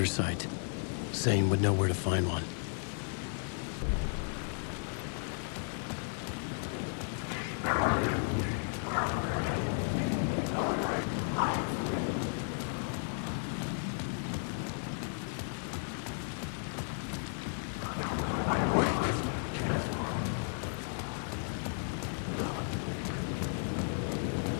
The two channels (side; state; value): right; silent; 55 dB below the other